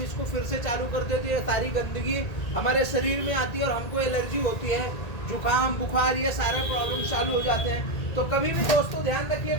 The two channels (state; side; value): late; right; 1.8 ms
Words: इसको फिर से चालू करते हैं तो ये सारी गंदगी हमारे शरीर में आती है और हमको एलर्जी होती है, जुकाम, बुखार, ये सारे प्रॉब्लम चालू हो जाते हैं। तो कभी भी दोस्तों ध्यान रखिए,